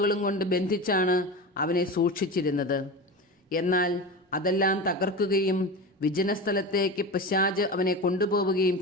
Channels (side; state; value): both; normal; correlation 0.26